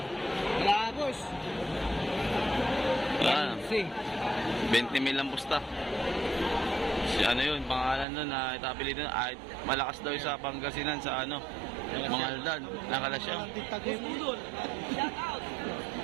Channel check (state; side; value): drops out; left; at 8.1 s